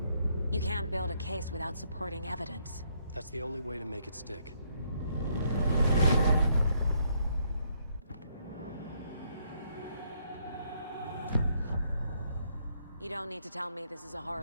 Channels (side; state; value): both; inverted; correlation -0.72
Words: You can't build a case without supporting evidence. That's the only way to make it stick. You don't need to tell me this is a